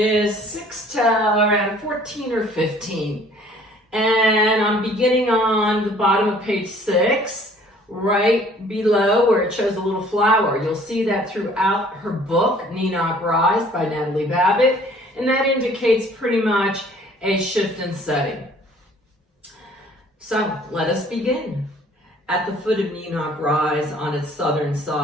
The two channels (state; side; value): normal; both; correlation 0.55